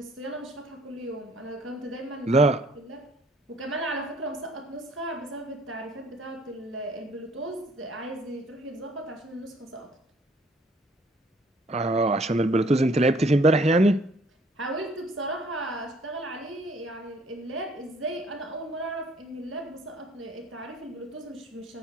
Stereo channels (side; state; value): both; normal; correlation 0.60